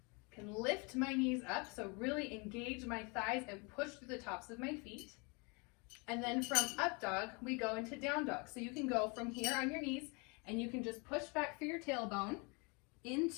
I can lift my knees up, so really engage my thighs and push through the tops of my feet. And then from up dog, we go into down dog. So you can go from here on your knees and you can just push back through your tailbone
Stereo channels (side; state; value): right; quieter; 30.8 dB